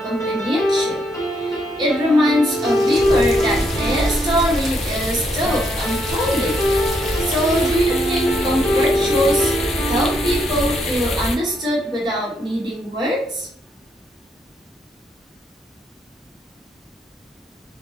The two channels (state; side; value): normal; both; correlation 0.75